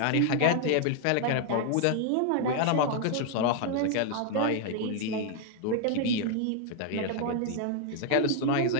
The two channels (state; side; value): different; both; correlation 0.00